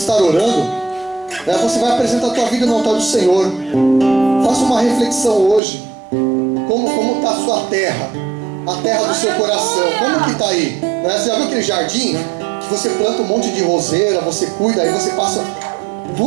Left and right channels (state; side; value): drops out; left; at 5.6 s